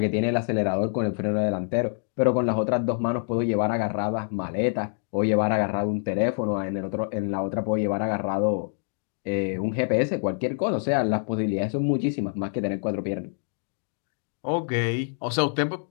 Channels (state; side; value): silent; right; digital silence